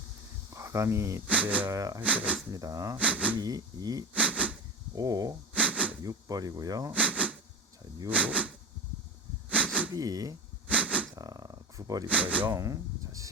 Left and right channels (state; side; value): normal; both; correlation 0.24